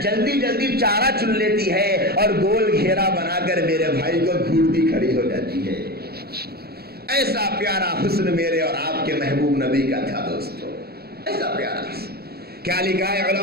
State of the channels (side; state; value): left; late; 0.46 ms